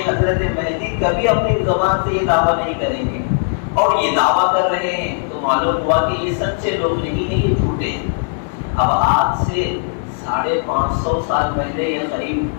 حضرت مہدی کبھی اپنی زبان سے یہ دعویٰ نہیں کریں گے، اور یہ دعویٰ کر رہے ہیں تو معلوم ہوا کہ یہ سچے لوگ نہیں ہیں، یہ جھوٹے ہیں۔ اب آج سے 550 سال پہلے یا قریب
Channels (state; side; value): silent; right; digital silence